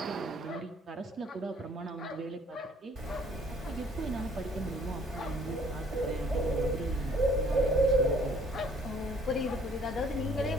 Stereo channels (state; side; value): normal; both; correlation 0.59